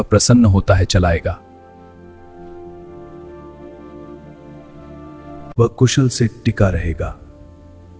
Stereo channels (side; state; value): both; identical; correlation 1.00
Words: प्रसन्न होता है चलाएगा। वह कुशल से टिका रहेगा